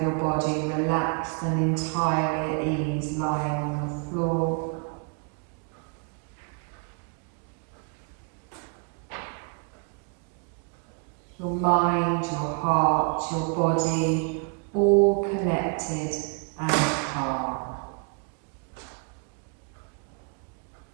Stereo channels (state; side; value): quieter; left; 36.8 dB